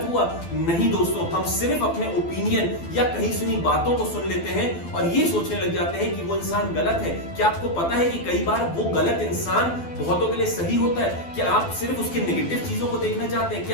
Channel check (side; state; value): right; late; 12 ms